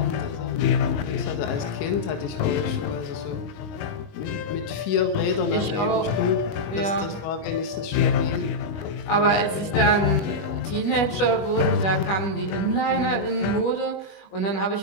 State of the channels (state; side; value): late; right; 21 ms